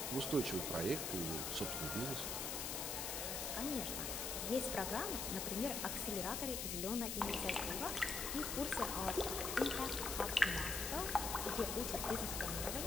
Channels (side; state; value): left; noise; hiss, 2 dB below the sound